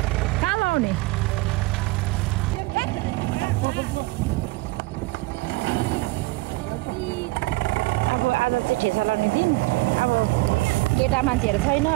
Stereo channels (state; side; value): quieter; left; 22.6 dB